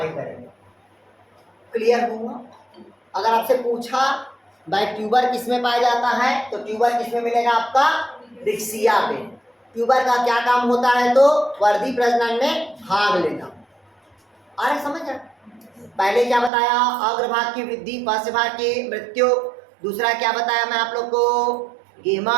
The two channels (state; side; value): drops out; left; at 16.5 s